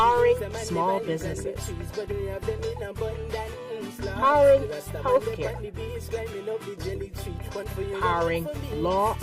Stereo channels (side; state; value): both; identical; correlation 1.00